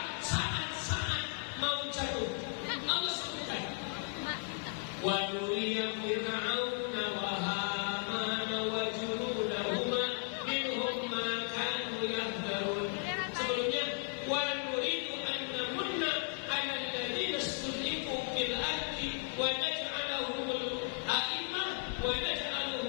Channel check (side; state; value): right; silent; 54 dB below the other